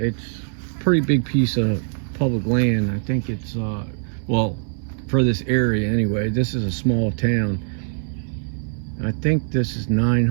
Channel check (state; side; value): silent; left; 60 dB below the other